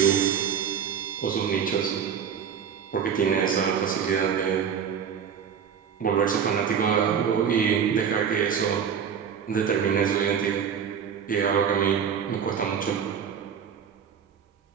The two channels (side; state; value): left; quieter; 7.5 dB